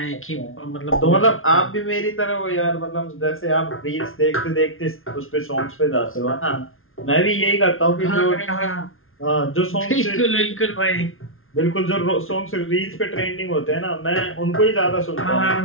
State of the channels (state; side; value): late; right; 0.60 ms